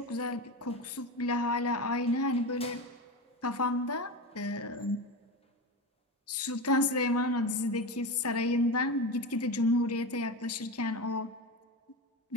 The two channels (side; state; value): both; normal; correlation 0.22